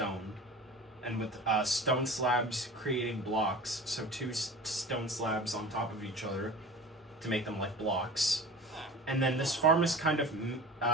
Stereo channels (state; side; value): normal; both; correlation 0.37